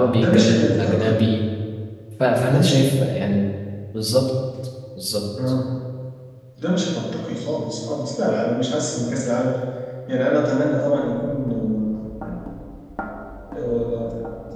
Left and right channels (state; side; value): identical; both; correlation 1.00